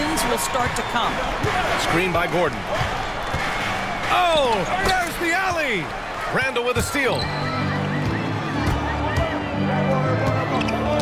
will start to come. Screen by Gordon. Oh, there's the alley. Randall with a steal.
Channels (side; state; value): both; identical; correlation 1.00